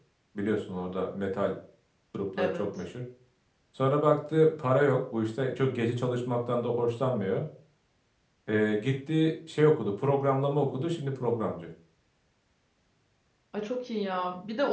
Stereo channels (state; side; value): identical; both; correlation 1.00